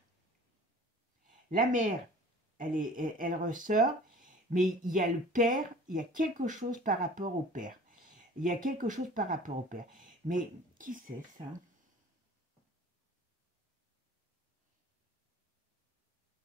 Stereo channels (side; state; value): both; normal; correlation 0.46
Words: La mère, elle ressort, mais il y a le père, il y a quelque chose par rapport au père. Il y a quelque chose par rapport au père. Mais qui c'est ça?